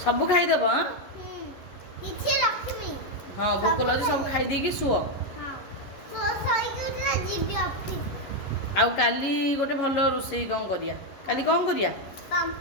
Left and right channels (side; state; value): right; late; 11 ms